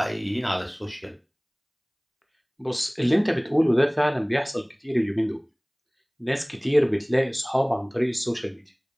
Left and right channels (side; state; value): both; identical; correlation 1.00